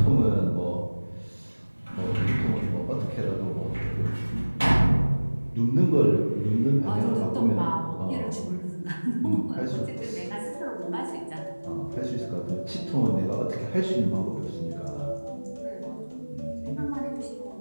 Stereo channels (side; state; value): both; inverted; correlation -1.00